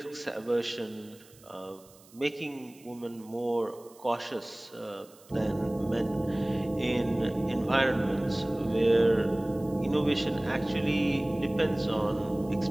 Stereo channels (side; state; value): right; noise; hiss, 25 dB below the sound